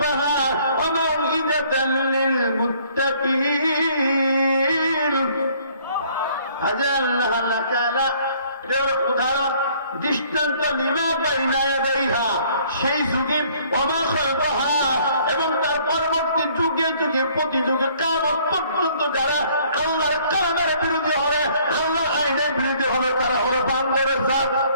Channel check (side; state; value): both; inverted; correlation -0.60